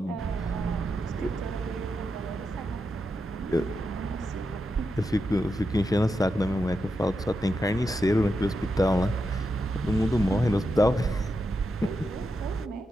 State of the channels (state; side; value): normal; both; correlation 0.86